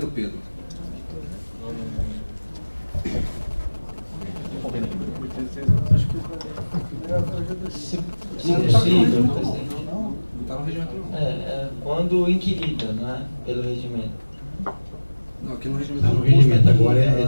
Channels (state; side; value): inverted; both; correlation -1.00